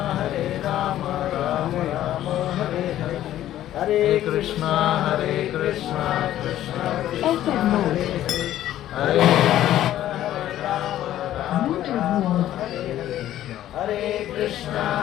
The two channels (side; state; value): right; quieter; 12.8 dB